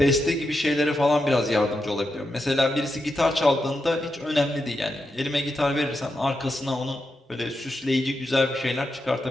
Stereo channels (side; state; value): both; normal; correlation 0.86